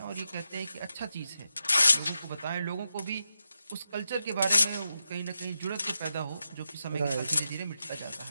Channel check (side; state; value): both; inverted; correlation -0.87